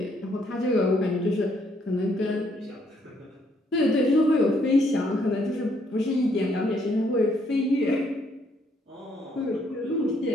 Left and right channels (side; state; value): both; normal; correlation 0.70